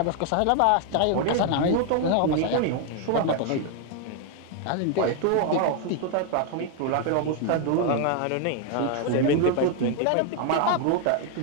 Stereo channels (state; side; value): different; both; correlation 0.00